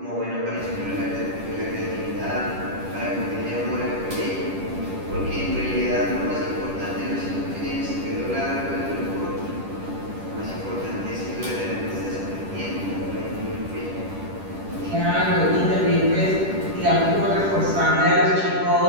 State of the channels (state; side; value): late; left; 10 ms